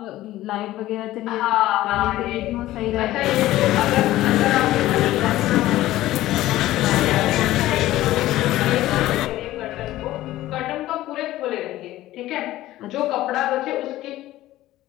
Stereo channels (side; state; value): right; quieter; 15.5 dB